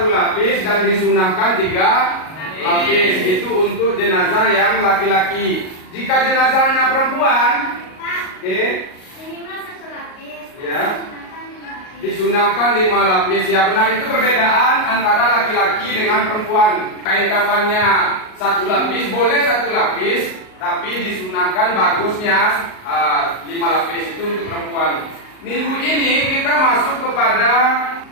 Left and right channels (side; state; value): right; late; 38 ms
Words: lapis dan disunahkan 3 lapis. Itu untuk jenazah yang laki-laki. Jika jenazahnya perempuan, oke, Minimal 1 lapis. Ya. Disunahkan 5 lapis. disunahkan 5 lapis. Ya benar, itu perbedaan antara laki-laki dengan perempuan. Kain kafannya 1 lapis, boleh 1 lapis, tapi disunahkan bagusnya 5 lapis, itu untuk perempuan. Minggu ini kita masuk kepada